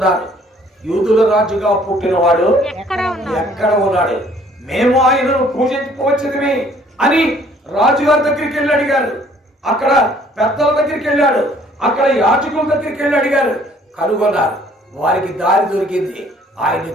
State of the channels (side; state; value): both; normal; correlation 0.59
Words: యూదుల రాజుగా పుట్టినవాడు ఎక్కడ ఉన్నాడు, మేము ఆయనను పూజించుకోవచ్చుది అని రాజుగారి దగ్గరికి వెళ్ళి అడిగారు. అక్కడ పెద్దల దగ్గరికి వెళ్ళాడు, అక్కడ యాజకుల దగ్గరికి వెళ్ళి అడిగారు, కనుగొన్నారు. వారికి దారి దొరికింది, ఆయన్ని